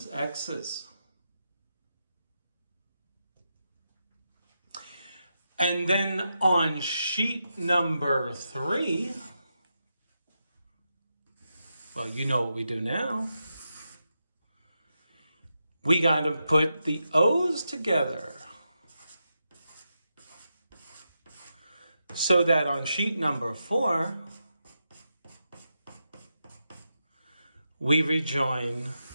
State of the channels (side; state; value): both; inverted; correlation -0.87